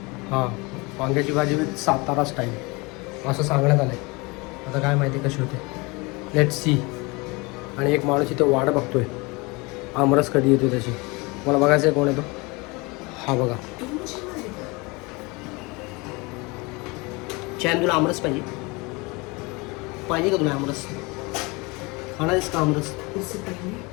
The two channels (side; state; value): right; quieter; 26.2 dB